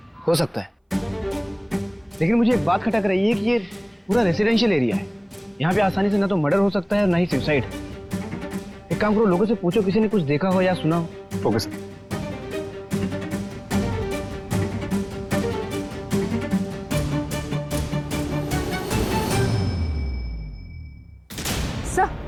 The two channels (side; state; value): both; identical; correlation 1.00